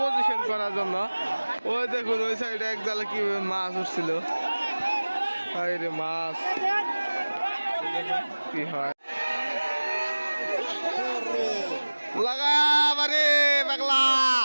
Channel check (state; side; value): inverted; both; correlation -1.00